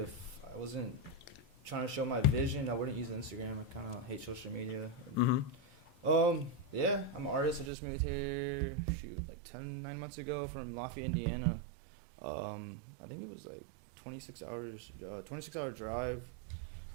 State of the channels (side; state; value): left; drops out; at 7.7 s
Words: I wasn't trying to show my vision, I wouldn't use Instagram. I kind of hate social media. Yeah, I'm an artist. I just moved here, like 9 months ago from Lafayette, Indiana. I think it was like 26 hour drive.